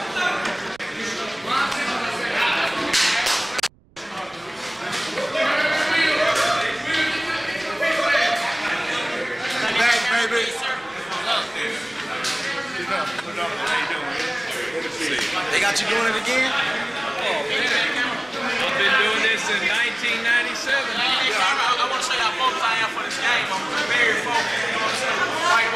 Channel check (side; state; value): right; noise; rumble, 30 dB below the sound